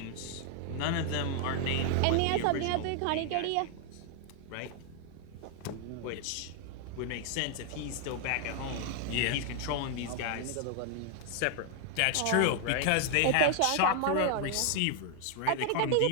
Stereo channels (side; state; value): both; different; correlation 0.00